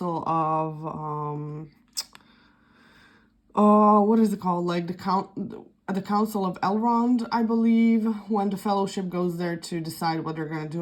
of, what is it called? Like the Council of Elrond, I believe, when the Fellowship goes there to decide what they're going to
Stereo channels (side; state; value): both; identical; correlation 1.00